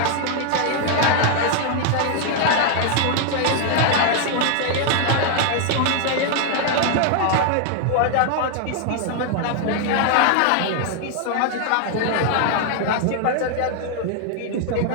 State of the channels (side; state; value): both; different; correlation 0.00